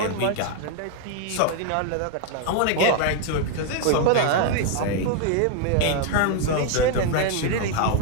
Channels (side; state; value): both; different; correlation 0.00